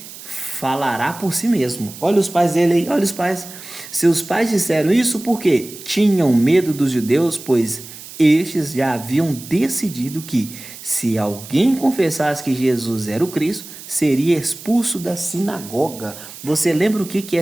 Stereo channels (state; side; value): noise; right; hiss, 15 dB below the sound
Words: falará por si mesmo. Olha os pais dele aí, olha os pais. Seus pais disseram isso porque tinham medo dos judeus, pois estes já haviam decidido que, se alguém confessasse que Jesus era o Cristo, seria expulso da sinagoga. Você lembra o que